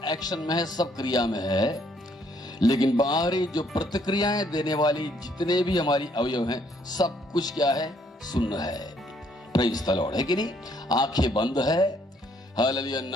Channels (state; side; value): normal; both; correlation 0.67